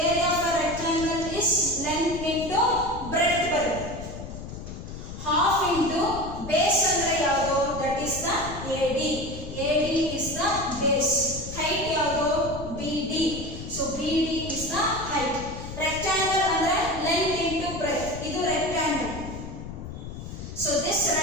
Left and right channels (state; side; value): noise; left; rumble, 10 dB below the sound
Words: area of a rectangle is length into breadth ಬರುತ್ತೆ. half into base ಅಂದ್ರೆ ಯಾವುದು, that is the AD. AD is the base. height ಯಾವುದು, BD. So BD is the height. rectangle ಅಂದ್ರೆ length into breadth. ಇದು rectangle. So this